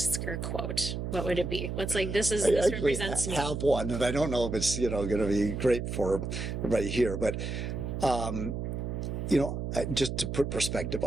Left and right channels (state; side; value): noise; right; hum, 4 dB below the sound